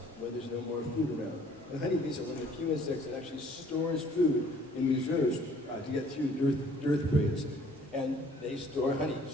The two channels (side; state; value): both; normal; correlation 0.57